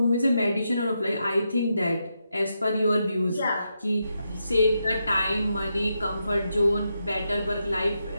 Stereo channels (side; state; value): both; inverted; correlation -0.84